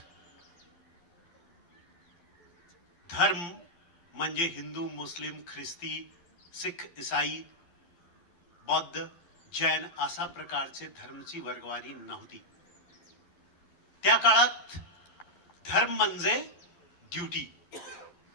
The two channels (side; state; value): right; late; 12 ms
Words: धर्म म्हणजे हिंदू, मुस्लिम, ख्रिस्ती, सिख, ईसाई, बौद्ध, जैन अशा प्रकारचे धर्मची वर्गवारी नव्हती. त्या काळात धर्म म्हणजे ड्यूटी,